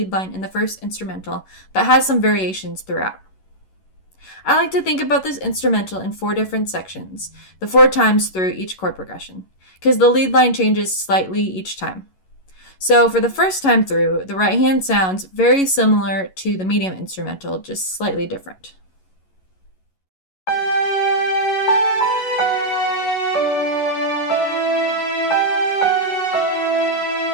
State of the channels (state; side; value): late; right; 11 ms